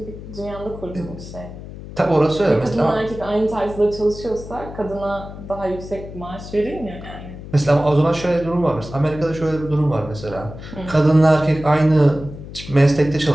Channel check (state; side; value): noise; left; hum, 13 dB below the sound